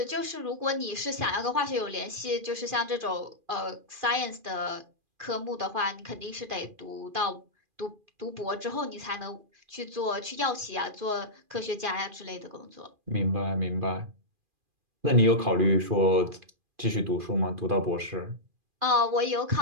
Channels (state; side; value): late; left; 2.4 ms